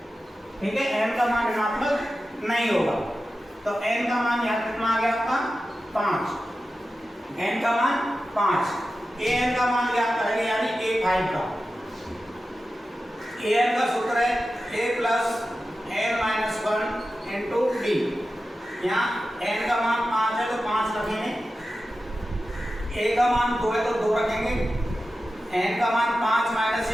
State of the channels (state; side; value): normal; both; correlation 0.93